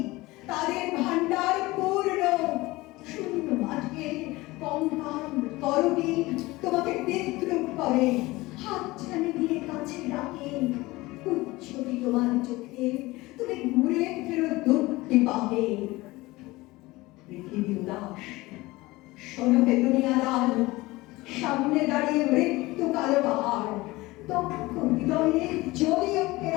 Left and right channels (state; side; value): quieter; right; 20.4 dB